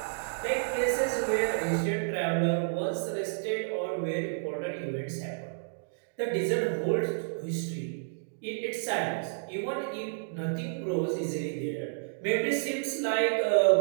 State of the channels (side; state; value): left; silent; digital silence